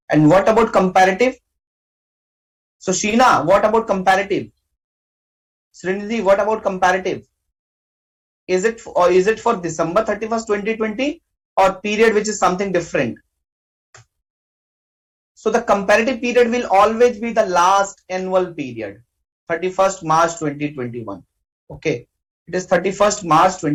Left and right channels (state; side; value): identical; both; correlation 1.00